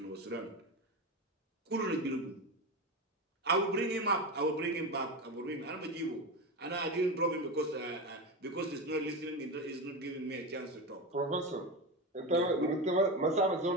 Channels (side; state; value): both; normal; correlation 0.19